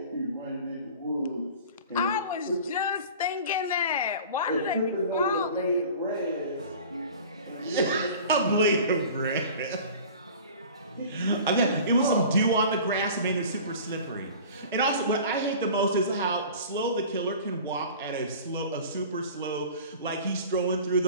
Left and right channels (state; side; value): inverted; both; correlation -0.41